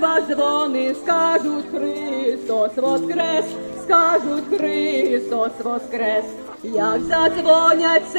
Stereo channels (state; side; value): inverted; both; correlation -1.00